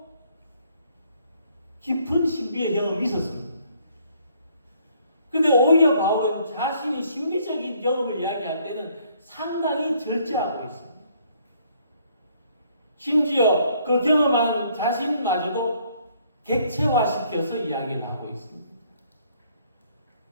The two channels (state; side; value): inverted; both; correlation -0.65